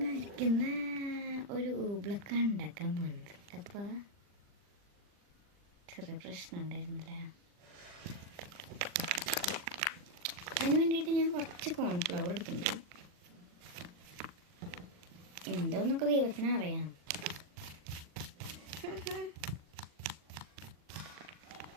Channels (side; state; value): left; late; 40 ms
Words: ആയിരിക്കുന്ന ഒരു ഊബ്ലൊക്കാണ് ഉണ്ടാക്കാൻ പോകുന്നത്. അപ്പോൾ ചെറിയ പ്രശ്നം ഉണ്ടായിരുന്നില്ല. അതിന് വേണ്ടിയിട്ട് ഞാൻ കുറച്ച് കോൺഫ്ലവർ എടുത്തിട്ടുണ്ട്. എന്തോന്നൊക്കെ ദൈവത്തിന് അറിയാം.